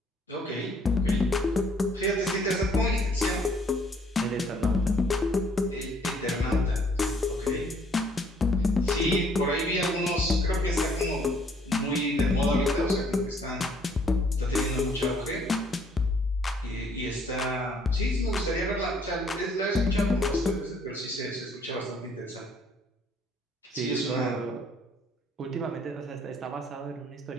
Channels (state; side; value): normal; both; correlation 0.63